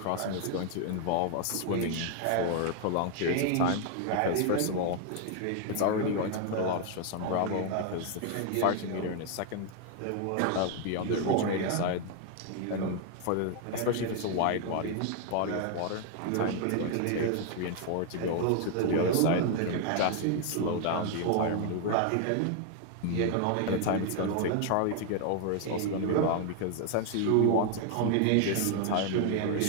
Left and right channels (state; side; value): different; both; correlation 0.00